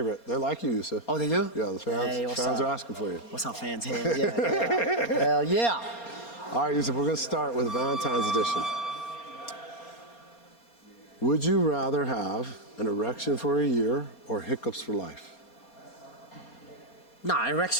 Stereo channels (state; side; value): late; right; 4.3 ms